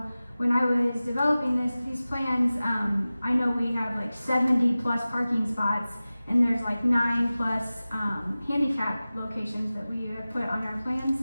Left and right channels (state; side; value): inverted; both; correlation -0.97